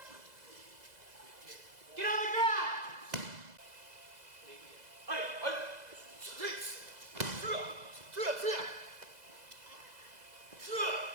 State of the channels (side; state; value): left; late; 2.0 ms